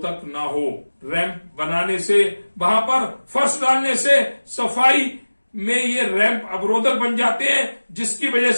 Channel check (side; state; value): both; inverted; correlation -1.00